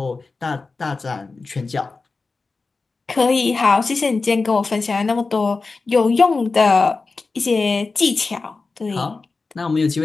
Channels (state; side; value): quieter; right; 4.0 dB